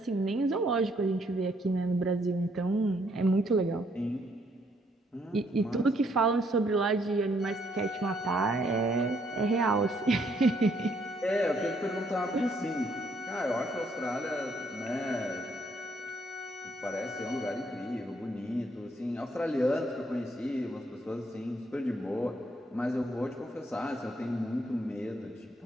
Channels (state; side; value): normal; both; correlation 0.70